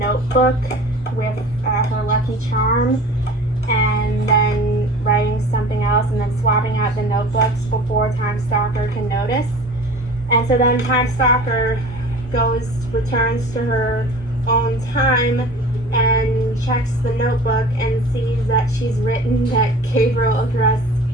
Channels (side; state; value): both; normal; correlation 0.41